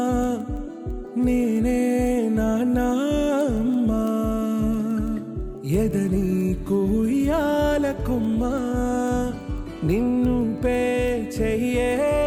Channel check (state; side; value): identical; both; correlation 1.00